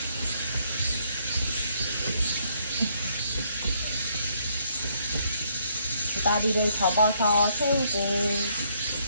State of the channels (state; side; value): inverted; both; correlation -0.70